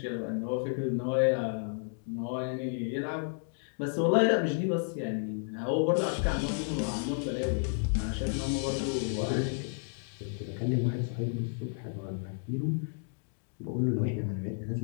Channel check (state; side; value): silent; right; 57 dB below the other